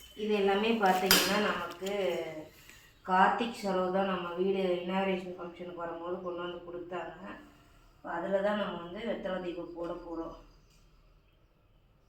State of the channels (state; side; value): identical; both; correlation 1.00